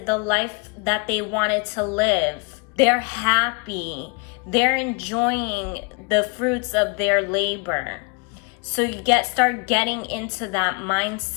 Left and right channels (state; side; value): quieter; right; 31.9 dB